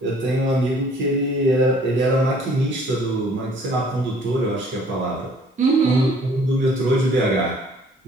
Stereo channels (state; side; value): normal; both; correlation 0.56